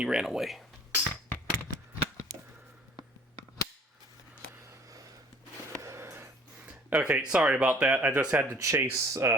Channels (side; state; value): both; normal; correlation 0.53